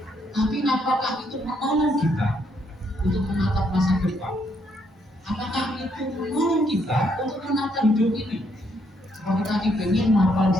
Tapi apakah itu menolong kita untuk menatap masa depan? Apakah itu menolong kita untuk menata hidup ini? Kalau kita ingin mapan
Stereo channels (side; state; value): both; normal; correlation 0.73